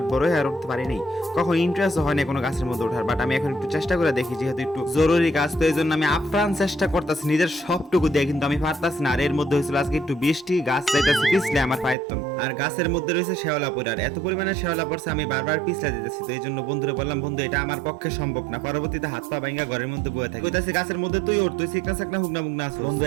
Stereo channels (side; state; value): left; drops out; at 12.0 s